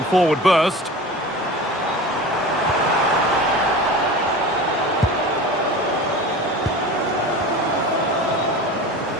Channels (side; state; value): both; normal; correlation 0.34